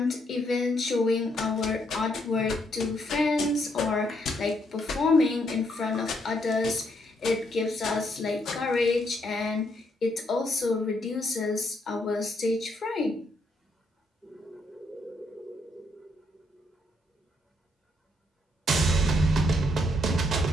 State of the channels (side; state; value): both; normal; correlation 0.74